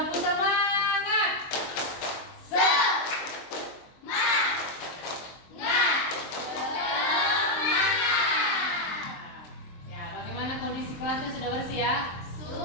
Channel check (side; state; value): right; late; 23 ms